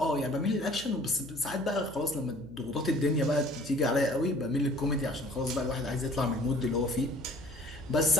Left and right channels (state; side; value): noise; left; hum, 20 dB below the sound